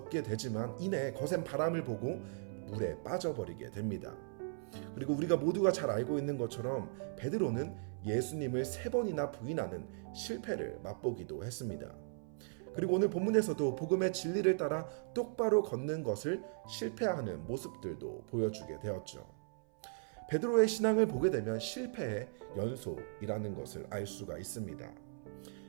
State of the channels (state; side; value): silent; left; 53 dB below the other